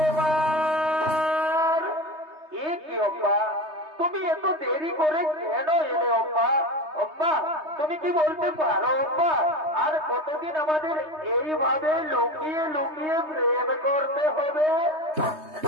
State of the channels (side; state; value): left; late; 3.2 ms